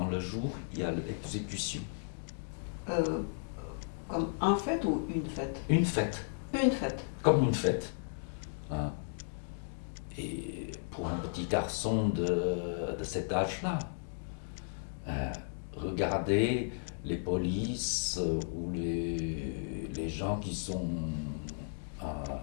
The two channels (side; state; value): right; silent; digital silence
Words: le jour, il y a l'exécution. Comme un fête ou une fête? Une fête. Une fête. Comme une fête. Hein. Et pour un petit garçon de cet âge-là, regardez les polices ou les gens qui sont